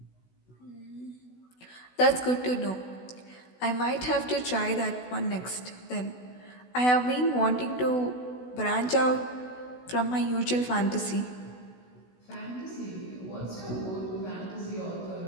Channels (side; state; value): right; late; 16 ms